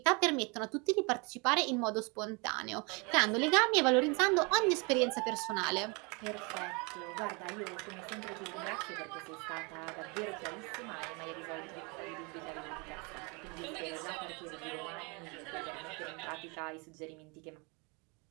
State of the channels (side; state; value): left; quieter; 30.4 dB